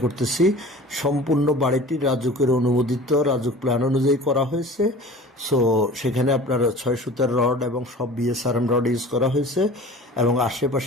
করতেছি। সম্পূর্ণ বাড়িটি রাজুকের অনুমোদিত, রাজুক প্ল্যান অনুযায়ী করা হয়েছে। সো সেখানে আপনার 6 সুতার রড এবং সব বিএসআরএম রড ইউজ করা হয়েছে, এবং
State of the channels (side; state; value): both; normal; correlation 0.41